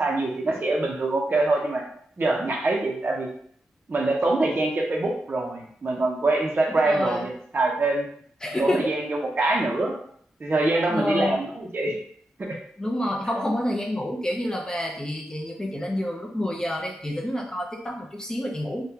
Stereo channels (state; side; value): normal; both; correlation 0.86